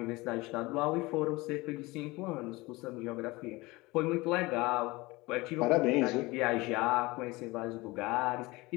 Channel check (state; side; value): quieter; right; 22.1 dB